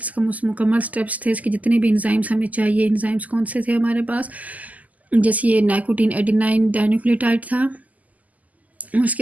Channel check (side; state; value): left; late; 0.077 ms